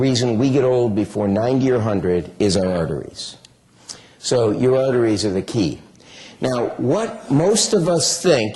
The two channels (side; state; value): both; identical; correlation 1.00